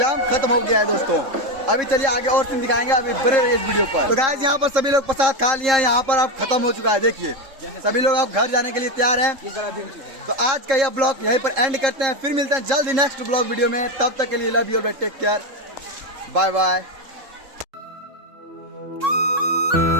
खत्म हो गया है दोस्तों। अभी चलिए आगे और सीन दिखाएंगे, अभी बने रहिए इस वीडियो पर। तो गाइस यहाँ पर सभी लोग प्रसाद खा लिया, यहाँ पर अब खत्म हो चुका है। देखिए सभी लोग अब घर जाने के लिए तैयार हैं। तो आज का यह ब्लॉग यहीं पर एंड करते हैं, फिर मिलते हैं जल्द ही नेक्स्ट ब्लॉग वीडियो में। तब तक के लिए लव यू और टेक केयर, बाय बाय।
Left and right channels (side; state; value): left; late; 3.7 ms